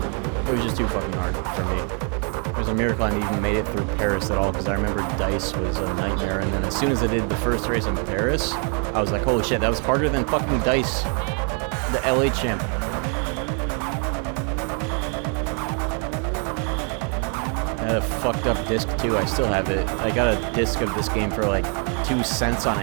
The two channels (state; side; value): quieter; left; 39.6 dB